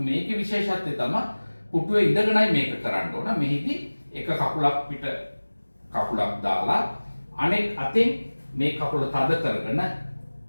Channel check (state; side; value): inverted; both; correlation -1.00